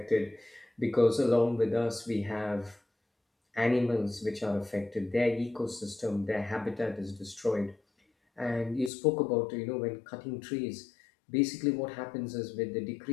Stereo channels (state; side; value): drops out; right; at 8.9 s